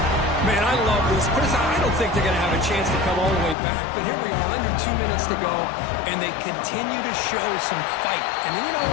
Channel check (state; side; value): drops out; right; at 3.6 s